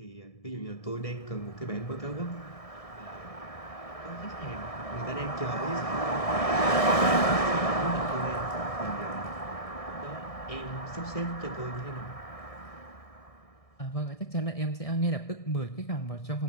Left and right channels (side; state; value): right; late; 1.6 ms